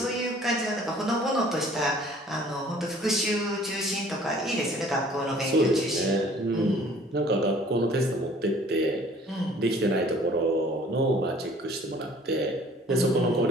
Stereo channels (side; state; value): both; normal; correlation 0.53